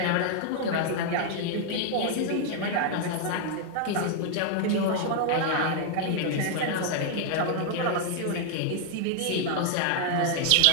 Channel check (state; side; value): different; both; correlation 0.00